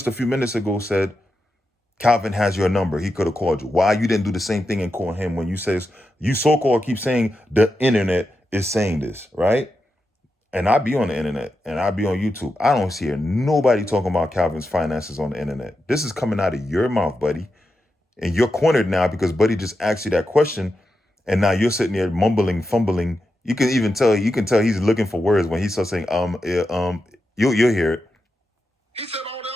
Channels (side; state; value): both; normal; correlation 0.88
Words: a few minutes ago said, Calvin has your number. He could have called you. Why you didn't do the same thing and call him when you says, you so-called keep saying the internet is saying this, right? And I be on the internet and I be on YouTube. I don't hear nobody talking about Calvin's finances on the internet. This is coming out of your mouth, buddy. And you're cornered now because buddy just asked you that question. And now you're sitting there mumbling, fumbling. You can tell he's looking for words when he starts saying, you'll hear it. He said all the